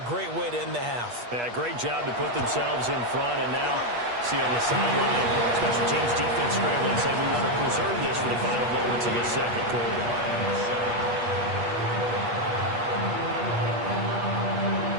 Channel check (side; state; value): left; late; 8.3 ms